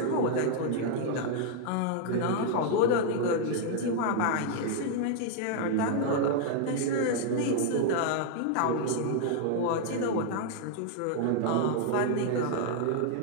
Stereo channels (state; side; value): different; both; correlation -0.01